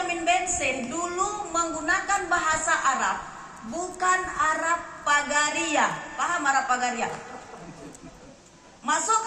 Bense dulu menggunakan bahasa Arab, bukan Arab Pagaria. Paham Arab Pagaria? Masuk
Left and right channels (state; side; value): identical; both; correlation 1.00